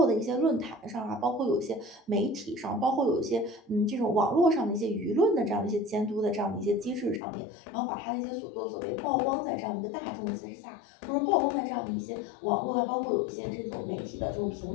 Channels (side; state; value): right; drops out; at 7.2 s